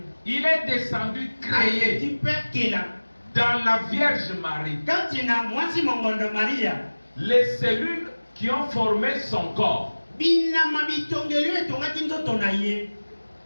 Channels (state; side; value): inverted; both; correlation -1.00